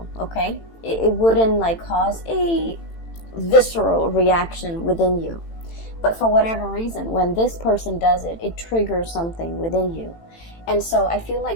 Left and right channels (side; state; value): right; late; 18 ms